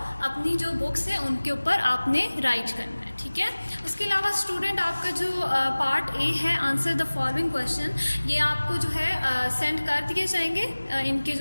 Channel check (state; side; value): inverted; both; correlation -1.00